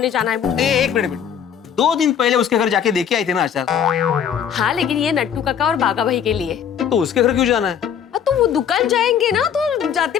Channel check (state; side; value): quieter; right; 8.4 dB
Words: जाना है मुझे। एक मिनट, 2 दिन पहले उसके घर जाके देखे आए थे ना अचार। हाँ लेकिन ये नट्टू काका और बागा भाई के लिए। तो उसके घर क्यों जाना है? तो वो दुकान जाएंगे ना, तो जाते